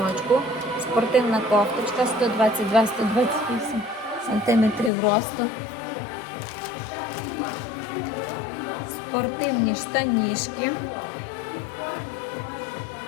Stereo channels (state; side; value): drops out; right; at 4.9 s